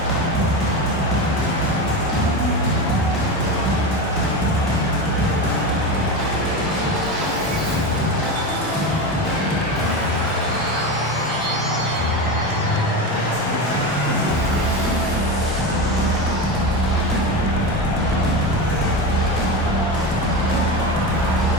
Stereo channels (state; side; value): normal; both; correlation 0.21